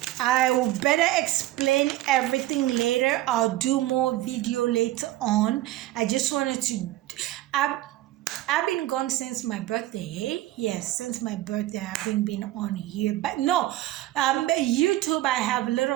I will better explain everything later. I'll do more video later on. I just wanted to, I've been gone since my birthday, hey? Yes, since my birthday I haven't been on here. But no, YouTube, I have a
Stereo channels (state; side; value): quieter; left; 15.6 dB